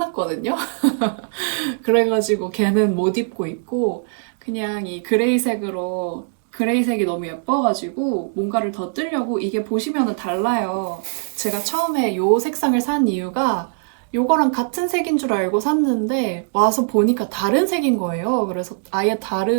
그래가지고 걔는 못 입고 있고 그냥 이 그레이색으로 그레이색이 너무 예뻐가지고 뭔가를 더 뜨려고 이게 보시면은 달라요. 제가 처음에 요 색상을 산 이유가 요거랑 같은 색인 줄 알고 샀는데 와서 보니까 다른 색인 거예요. 그래서 아예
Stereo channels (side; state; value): left; silent; 64 dB below the other